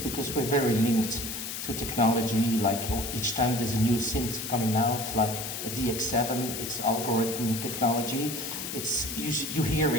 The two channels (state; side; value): noise; left; hiss, 6 dB below the sound